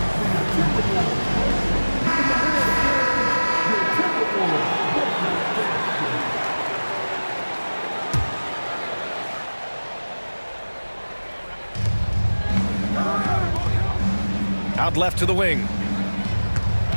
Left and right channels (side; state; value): both; inverted; correlation -1.00